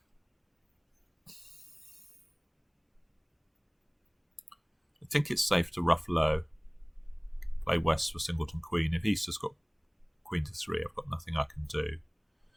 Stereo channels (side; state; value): both; identical; correlation 1.00